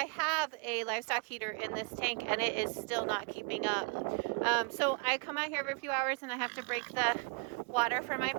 have a livestock heater in this tank and it is still not keeping up. So I come out here every few hours and I have to break the water for my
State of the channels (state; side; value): quieter; left; 33.8 dB